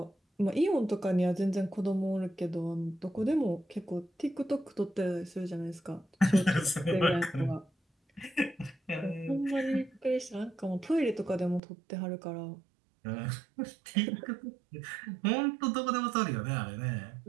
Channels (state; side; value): drops out; left; at 11.6 s